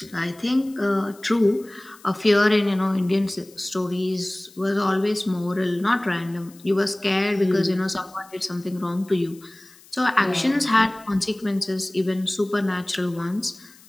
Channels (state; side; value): noise; left; hiss, 25 dB below the sound